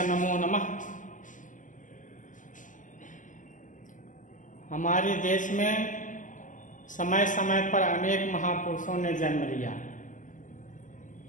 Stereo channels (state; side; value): late; right; 0.37 ms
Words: नमो नमः। हमारे देश में समय समय पर अनेक महापुरुषों ने जन्म लिया।